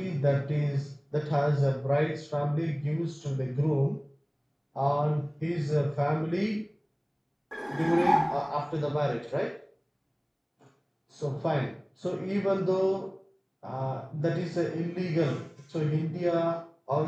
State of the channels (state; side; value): identical; both; correlation 1.00